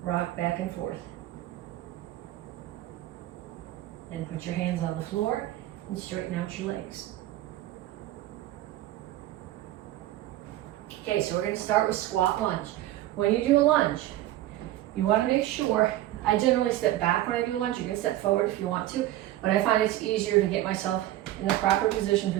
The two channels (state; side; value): quieter; left; 14.6 dB